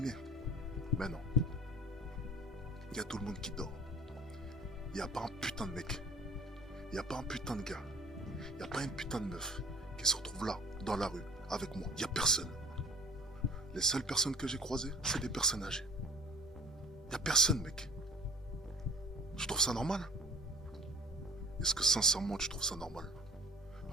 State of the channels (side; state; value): both; normal; correlation 0.45